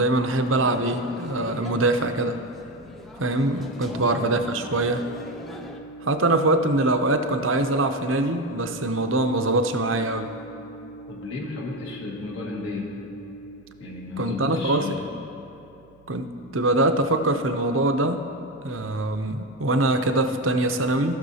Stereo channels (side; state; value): right; noise; hum, 30 dB below the sound